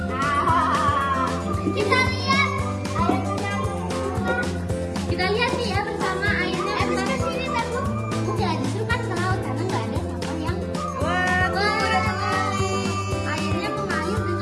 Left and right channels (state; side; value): identical; both; correlation 1.00